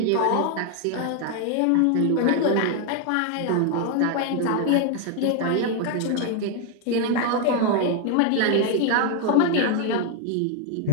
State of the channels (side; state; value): both; different; correlation 0.01